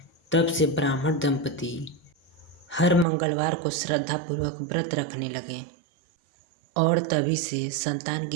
तब से ब्राह्मण दंपति हर मंगलवार को श्रद्धापूर्वक व्रत रखने लगे और तभी से संतान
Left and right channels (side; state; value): left; drops out; at 3.1 s